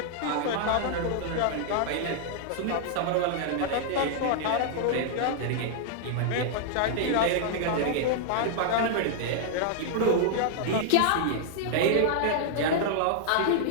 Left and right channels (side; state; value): both; different; correlation -0.01